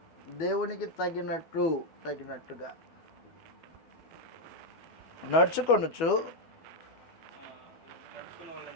దేవునికి తగినట్టుగా నడుచుకొనుచు,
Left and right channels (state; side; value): late; right; 12 ms